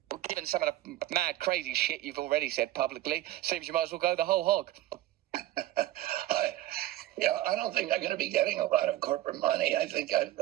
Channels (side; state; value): left; quieter; 15.1 dB